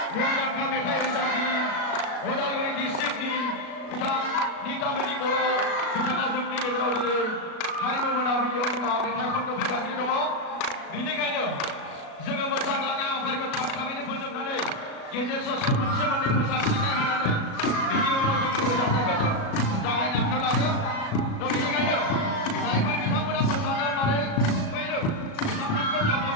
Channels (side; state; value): right; late; 37 ms